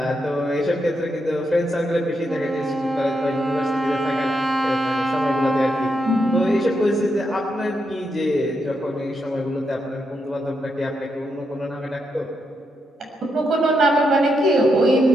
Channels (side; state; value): both; normal; correlation 0.82